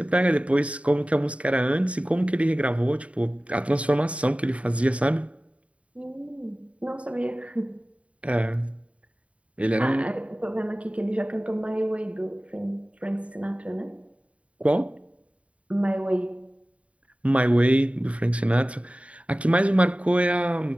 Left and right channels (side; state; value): left; late; 0.064 ms